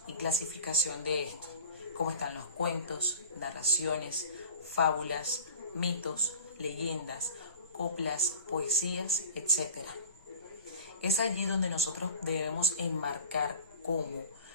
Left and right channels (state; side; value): inverted; both; correlation -0.41